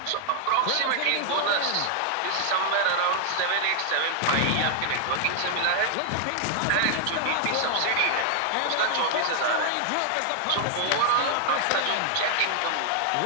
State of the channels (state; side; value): different; both; correlation 0.00